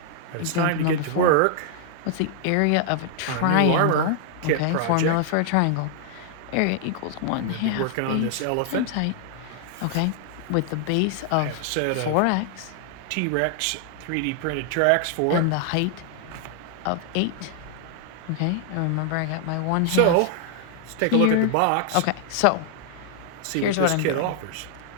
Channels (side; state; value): both; different; correlation 0.00